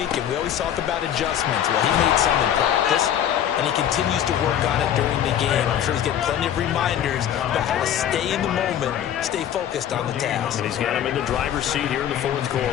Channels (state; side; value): quieter; right; 10.2 dB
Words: and we always talk about adjustments, well, he made some in practice, and he continues to work on it during the game. I'm sure he's getting plenty of reminders about how to stay in the moment, stay focused on the task. And he's got him in the driver's seat here in the 4th